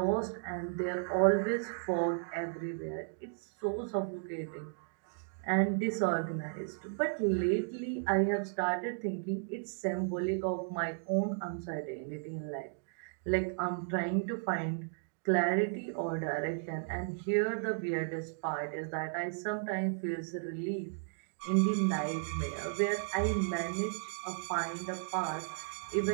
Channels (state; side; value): silent; left; digital silence